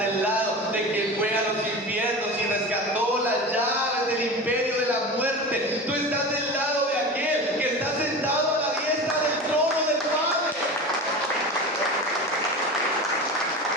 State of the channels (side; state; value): both; normal; correlation 0.30